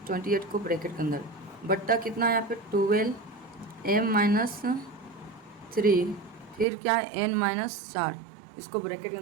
28 को ब्रैकेट के अंदर, बट्टा कितना है यहाँ पे 12m माइनस 3, फिर क्या है n माइनस 4, इसको ब्रैकेट के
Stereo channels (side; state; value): left; drops out; at 6.7 s